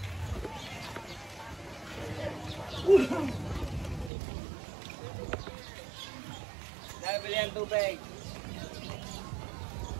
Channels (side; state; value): left; drops out; at 4.1 s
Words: Nabili ang tubig.